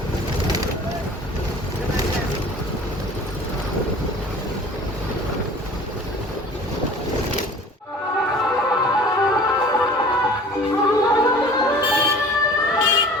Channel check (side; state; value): both; normal; correlation 0.45